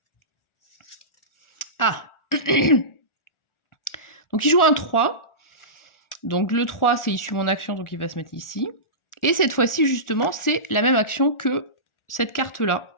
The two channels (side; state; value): right; late; 1.4 ms